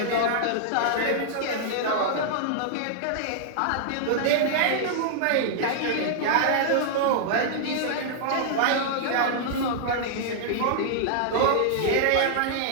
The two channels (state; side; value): different; both; correlation -0.01